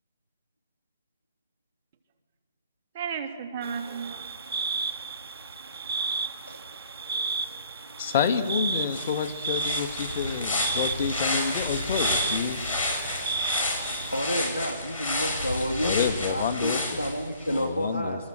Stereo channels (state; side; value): inverted; both; correlation -0.54